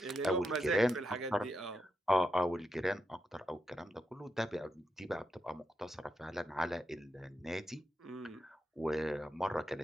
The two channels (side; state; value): both; normal; correlation 0.85